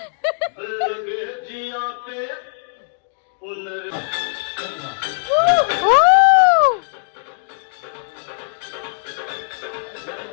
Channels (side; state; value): right; silent; digital silence